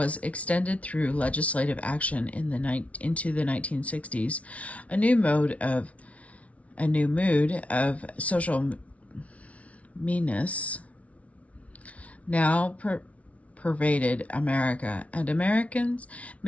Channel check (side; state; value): right; late; 0.065 ms